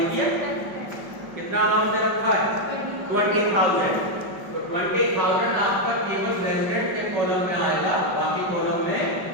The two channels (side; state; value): left; late; 5.3 ms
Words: ही है। कितना अमाउंट दे रखा है, 20,000, तो 20,000 आपका केवल रेजिडेंट के कॉलम में आएगा, बाकी कॉलम में